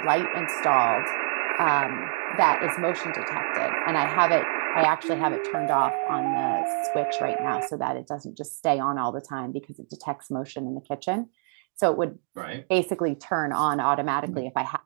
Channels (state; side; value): silent; left; digital silence